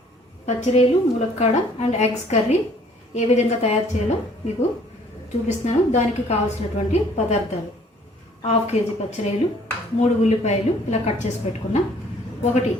పచ్చిరొయ్యలు, ములక్కాడ అండ్ ఎగ్స్ కర్రీ ఏ విధంగా తయారు చేయాలో మీకు చూపిస్తున్నాను. దానికి కావాల్సినటువంటి పదార్థాలు: 1/2 కేజీ పచ్చిరొయ్యలు, 3 ఉల్లిపాయలు ఇలా కట్ చేసి పెట్టుకున్నా, 1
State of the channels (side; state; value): both; normal; correlation 0.58